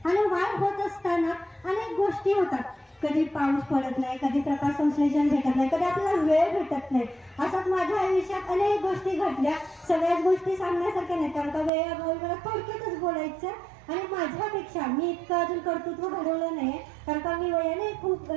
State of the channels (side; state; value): left; drops out; at 11.7 s